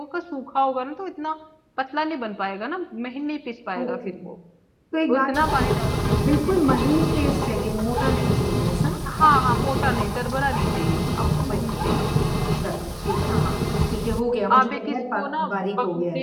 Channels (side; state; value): both; identical; correlation 1.00